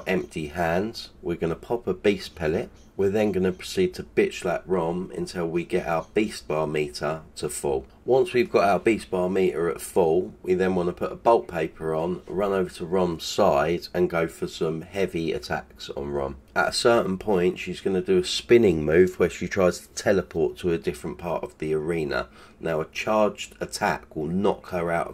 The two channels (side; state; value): both; identical; correlation 1.00